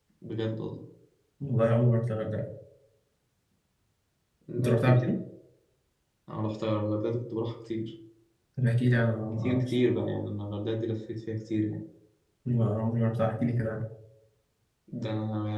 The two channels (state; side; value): identical; both; correlation 1.00